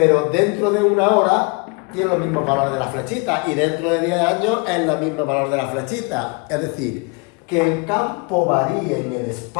dentro de una hora tiene los mismos valores de la flechita y dentro de 10 años es el mismo valor de la flechita. Es decir, que el campo varíe en el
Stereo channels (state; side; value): quieter; right; 31.0 dB